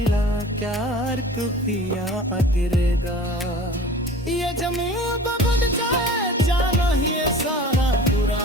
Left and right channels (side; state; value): both; normal; correlation 0.42